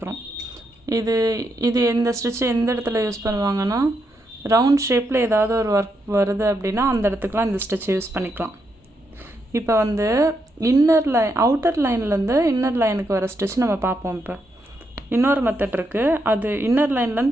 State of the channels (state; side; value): normal; both; correlation 0.81